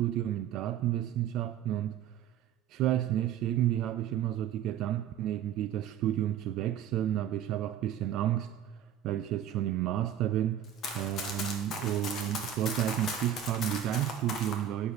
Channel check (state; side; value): quieter; left; 9.9 dB